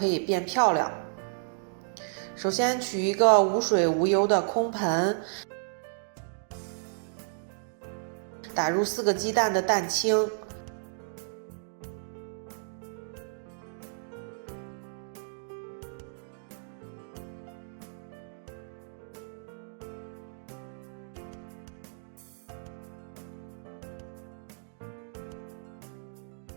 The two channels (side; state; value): left; silent; digital silence